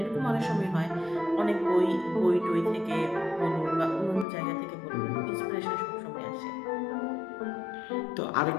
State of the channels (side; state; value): right; drops out; at 4.2 s